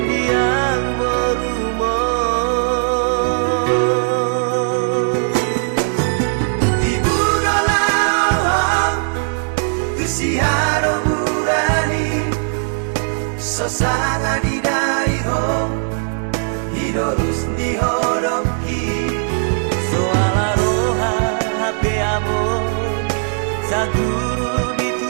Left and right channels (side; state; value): left; silent; 67 dB below the other